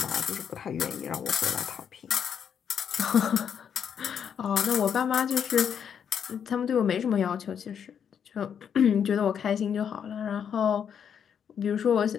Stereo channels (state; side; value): quieter; right; 7.9 dB